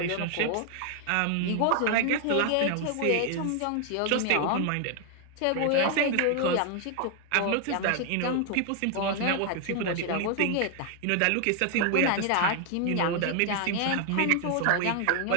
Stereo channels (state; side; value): different; both; correlation 0.00